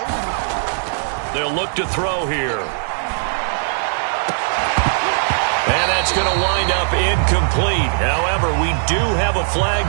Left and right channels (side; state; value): left; silent; 63 dB below the other